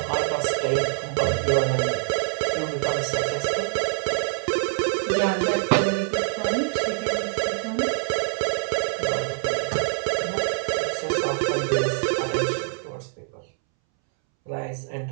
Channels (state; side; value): silent; left; 62 dB below the other